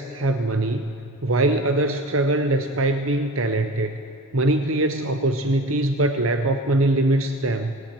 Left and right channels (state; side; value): normal; both; correlation 0.37